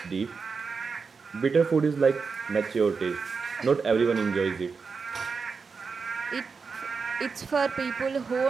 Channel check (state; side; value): quieter; left; 5.1 dB